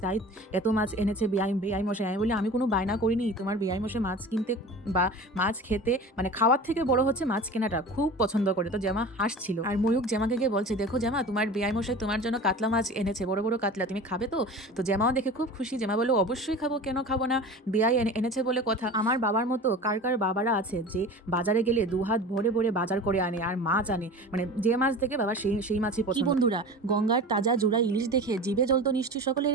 তাই এত মাছ এনেছে বেআই মশাই। আমি বলি আমি কোনো বায়না করিনি, তোমার বেআই মশাই মাছ কিনতে বা মাছ খেতে, মানে খাওয়ার থেকে বড় হচ্ছে মাছ কেনাটা, খুব পছন্দ করে। তো জামা হাসছিল। আর ময়ূক জামাকে গিয়ে বলছে দেখো জামা, তোমার বেআই মশাই তোমার জন্য কাতলা মাছ এনেছে, বড় বড় কাতলা, তুমি খাবে তো? তো জামাও দেখে খুব খুশি। জামা বললো অবশ্যই খাবো, কেন খাবো না, বেআই এনেছে বলে কথা। আমার বাবার মতো কার কার বাবারা আছে যে বাজারে গেলে 2 হাত ভরে ভরে বাজার করে আনে আর মাছ আনে, মানে যে মাছ দেখে বাবা সেই মাছই পছন্দ। বন্ধুরা, গঙ্গার তাজা জোড়া ইলিশ দেখে জিভে জল তো নিশ্চয়ই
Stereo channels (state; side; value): normal; both; correlation 0.36